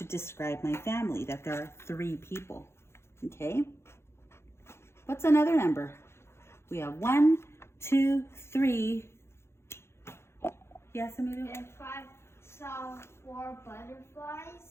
describe my family, that there are 3 people, okay? What's another number? We have 1, 2, 3. Yes, Emilio? If I saw 4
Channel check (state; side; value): late; right; 0.12 ms